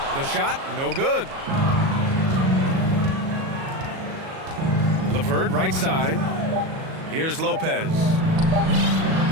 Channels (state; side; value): late; left; 37 ms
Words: The shot, no good. LeVert, right side. Here's Lopez.